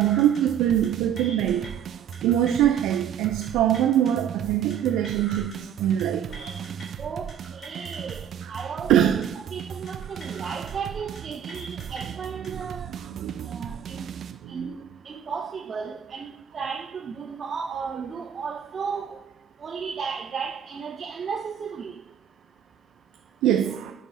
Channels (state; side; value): quieter; left; 9.5 dB